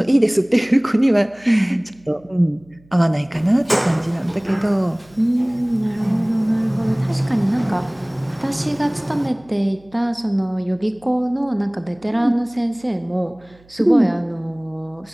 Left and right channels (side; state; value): right; noise; hum, 29 dB below the sound